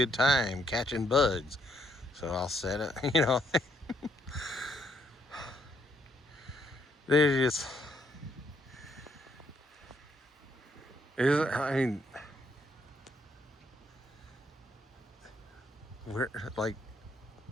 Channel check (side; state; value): both; normal; correlation 0.72